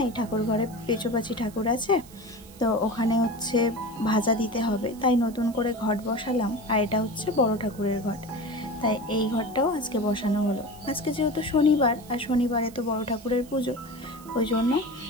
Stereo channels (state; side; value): noise; right; hiss, 22 dB below the sound